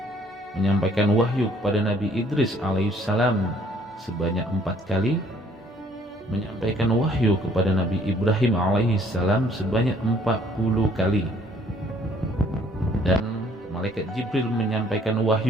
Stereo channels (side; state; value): both; normal; correlation 0.61